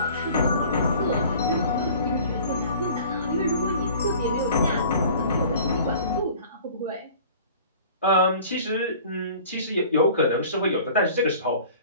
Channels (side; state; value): both; inverted; correlation -0.47